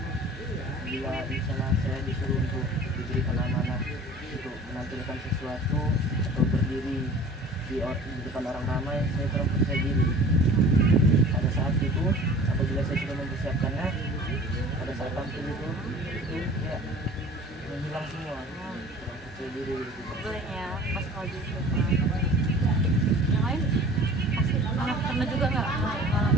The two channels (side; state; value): both; normal; correlation 0.45